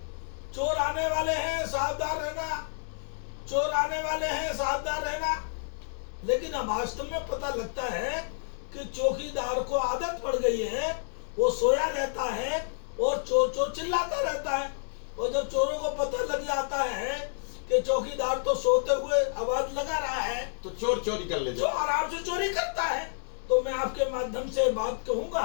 चोर आने वाले हैं सावधान रहना, चोर आने वाले हैं सावधान रहना। लेकिन अब वास्तव में पता लगता है कि चौकीदार को आदत पड़ गई है, वो सोया रहता है और चोर चोर चिल्लाता रहता है। और जब चोरों को पता लग जाता है कि चौकीदार तो सोते हुए आवाज लगा रहा है, तो चोर चोरी कर ले, जो आराम से चोरी करता है। तो मैं आपके माध्यम से बात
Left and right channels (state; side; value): silent; right; digital silence